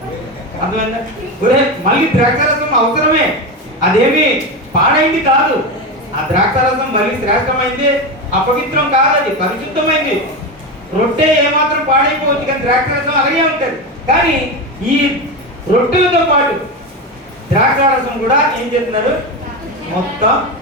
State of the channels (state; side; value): normal; both; correlation 0.17